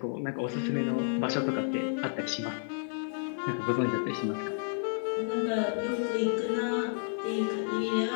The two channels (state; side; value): silent; right; digital silence